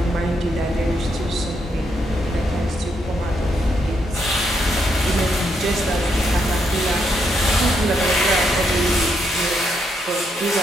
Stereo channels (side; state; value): both; normal; correlation 0.78